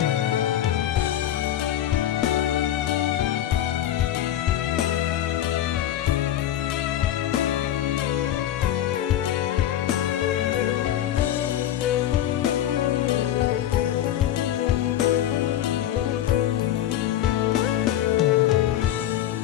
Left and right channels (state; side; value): quieter; right; 11.9 dB